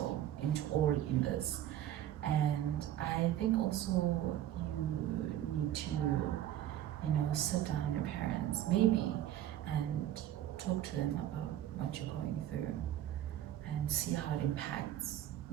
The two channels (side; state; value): left; quieter; 12.1 dB